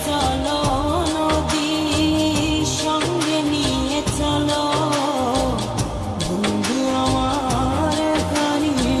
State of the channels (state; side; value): identical; both; correlation 1.00